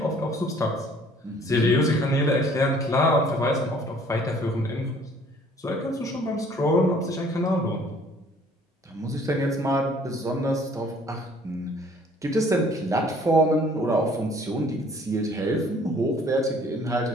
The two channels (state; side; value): normal; both; correlation 0.56